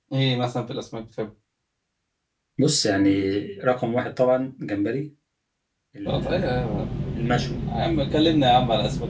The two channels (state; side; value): identical; both; correlation 1.00